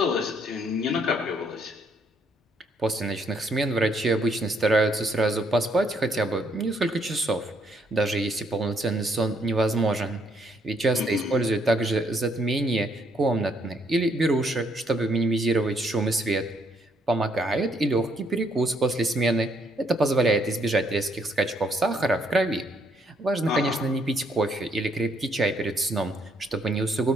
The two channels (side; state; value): both; normal; correlation 0.70